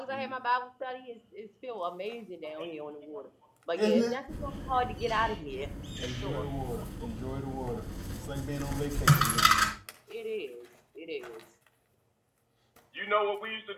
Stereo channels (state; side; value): identical; both; correlation 1.00